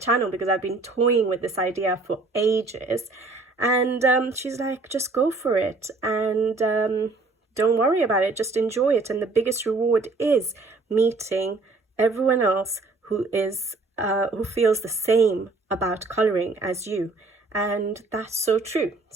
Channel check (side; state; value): left; quieter; 3.5 dB